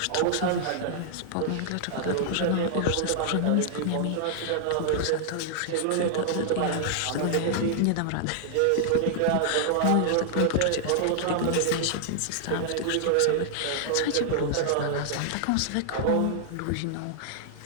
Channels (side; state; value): both; different; correlation 0.00